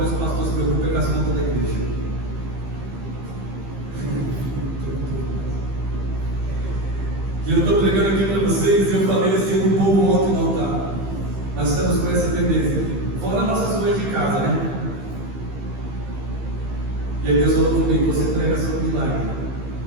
que o pastor se preocupa é com as contas da igreja. E eu estou pregando aqui para vocês, e eu falei assim para o povo ontem no altar. Nós estamos com essa tendência, fora nossas coisas de casa, né? E aí Deus falou comigo, você prega sobre milagre.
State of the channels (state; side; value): late; left; 15 ms